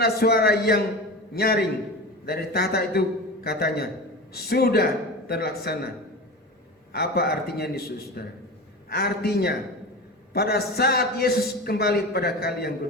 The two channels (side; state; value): both; normal; correlation 0.28